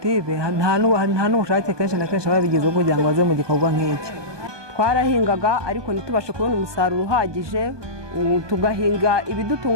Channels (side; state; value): left; late; 1.2 ms